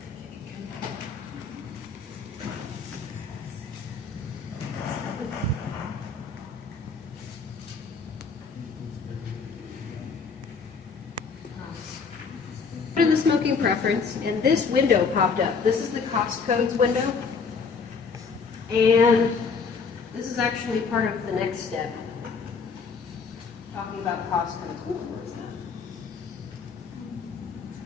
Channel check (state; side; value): quieter; right; 5.2 dB